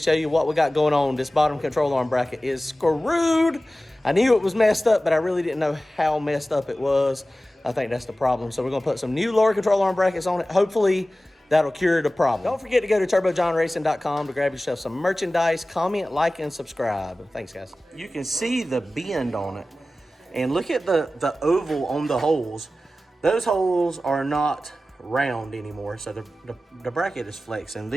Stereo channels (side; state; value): both; normal; correlation 0.96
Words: you what we got going on. This bottom control arm bracket is screwed. I knew it was messed up, but I really didn't know how messed up it was. I think that's the problem. So we're going to put some new lower control arm brackets on it. Hopefully, that'll cure the problem. Don't forget to go to turbojohnracing.com to grab yourself some merchandise. Comment, like, and subscribe. Thanks, guys. You can see the bend on it. And look at the oval on the holes. Those holes are not round anymore, so the bracket is flexing.